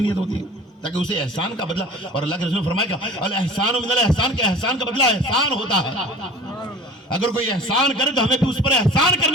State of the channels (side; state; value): both; normal; correlation 0.42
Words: नीयत होती है, ताकि उसे एहसान का बदला। और अल्लाह के रसूल ने फरमाया अल एहसान मिनल एहसान, के एहसान का बदला एहसान होता है। अगर कोई एहसान करे तो हमें भी उस पर एहसान